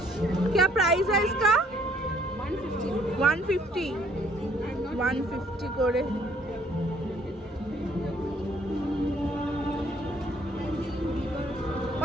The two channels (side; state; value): both; normal; correlation 0.63